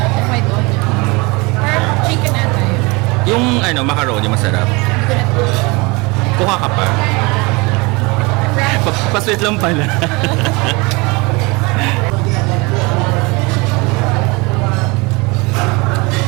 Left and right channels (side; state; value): left; quieter; 26.2 dB